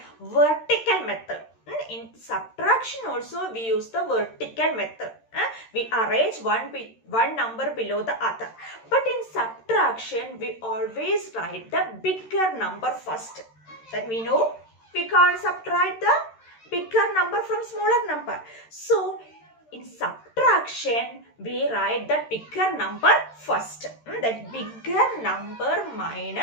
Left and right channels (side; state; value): right; late; 13 ms